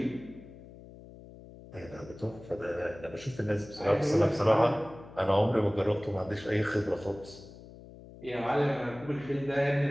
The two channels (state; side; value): noise; left; hum, 18 dB below the sound